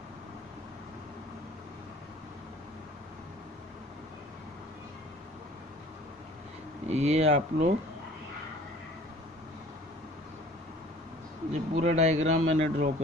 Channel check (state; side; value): normal; both; correlation 0.49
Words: ये आप लोग, ये पूरा डायग्राम मैंने ड्रॉ